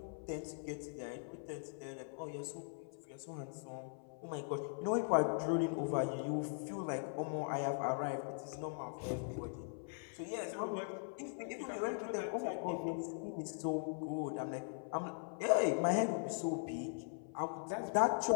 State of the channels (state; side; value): silent; right; 51 dB below the other